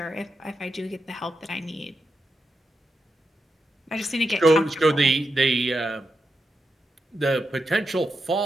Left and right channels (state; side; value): normal; both; correlation 0.86